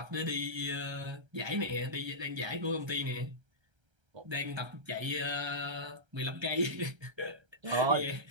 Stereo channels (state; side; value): late; left; 1.3 ms